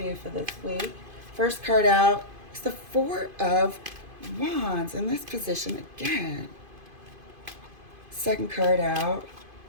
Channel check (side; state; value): left; late; 2.5 ms